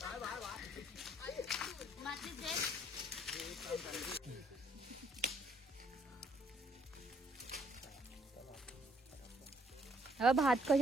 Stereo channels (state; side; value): normal; both; correlation 0.66